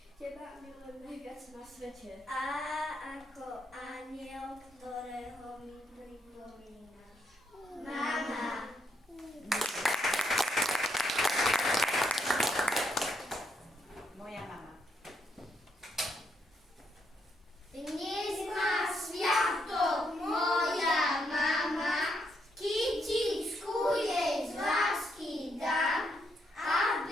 teba milujem najviac na svete. A ako aniel, ktorého mi pripomínaš. Mama. Moja mama. Dnes má sviatok moja mama, kytičku jej z lásky dám,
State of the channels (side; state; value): both; normal; correlation 0.77